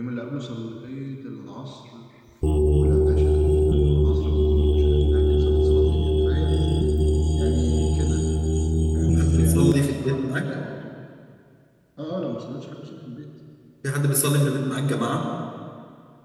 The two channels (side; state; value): both; identical; correlation 1.00